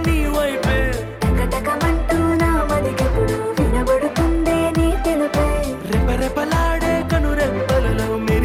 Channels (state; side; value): identical; both; correlation 1.00